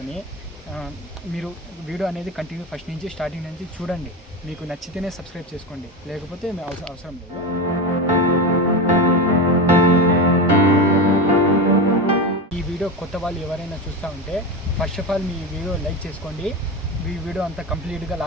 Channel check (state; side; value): normal; both; correlation 0.20